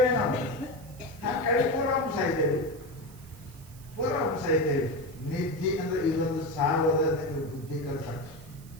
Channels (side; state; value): right; noise; hiss, 23 dB below the sound